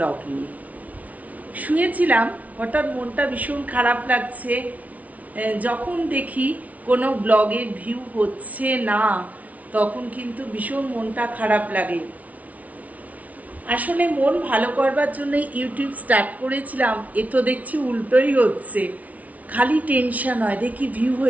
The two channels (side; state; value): left; late; 0.070 ms